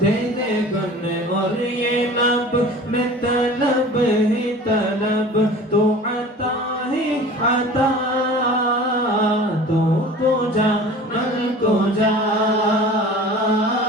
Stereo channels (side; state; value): both; normal; correlation 0.41